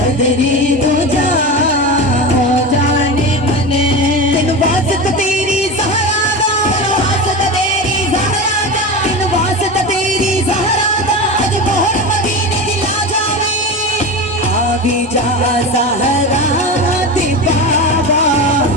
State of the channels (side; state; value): both; normal; correlation 0.25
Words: दो जा ओ जाने मन तेन वास्ता तेरी ज़हरा दा वास्ता तेरी ज़हरा दा तेन वास्ता तेरी ज़हरा दा अज मोहर मदीने दी ला जावे आवी जा ज़हरा दी बाबा